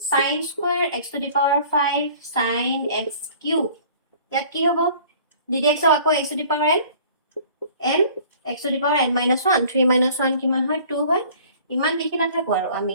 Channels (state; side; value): inverted; both; correlation -0.50